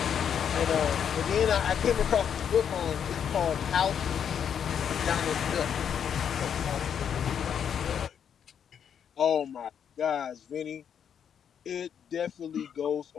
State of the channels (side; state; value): right; quieter; 8.2 dB